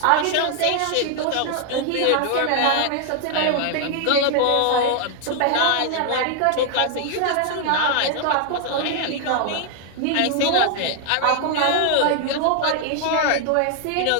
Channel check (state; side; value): different; both; correlation 0.00